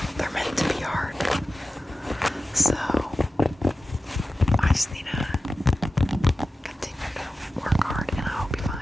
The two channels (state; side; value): normal; both; correlation 0.94